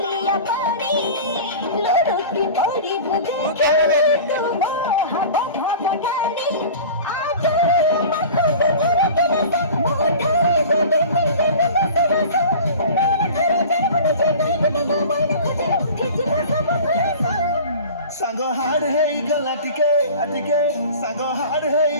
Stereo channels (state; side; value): inverted; both; correlation -0.39